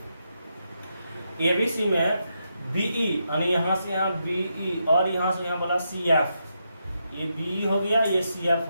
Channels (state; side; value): inverted; both; correlation -0.83